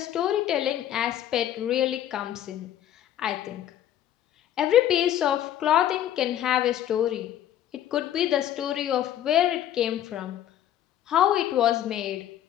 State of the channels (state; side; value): quieter; right; 11.4 dB